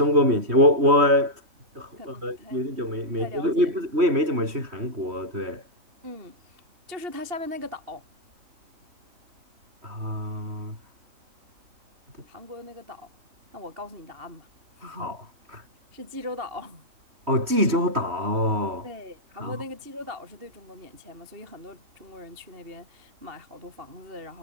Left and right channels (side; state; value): left; late; 3.1 ms